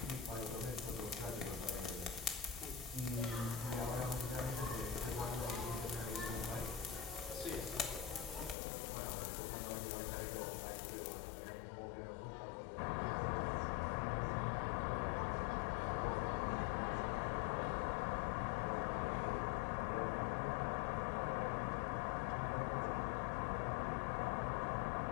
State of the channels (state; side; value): drops out; right; at 8.6 s